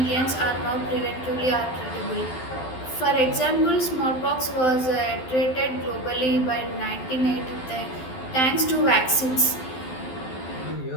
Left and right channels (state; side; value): late; right; 12 ms